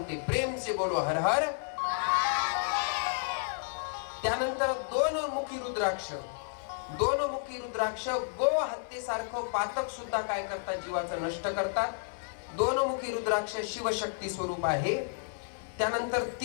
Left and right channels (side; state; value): right; silent; 55 dB below the other